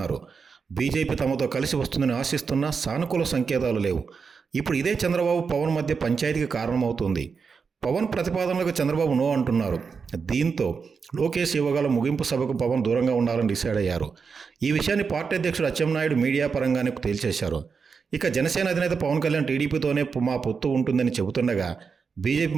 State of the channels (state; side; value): quieter; left; 5.5 dB